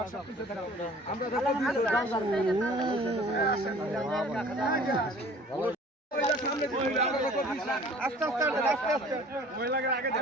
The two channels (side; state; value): both; normal; correlation 0.49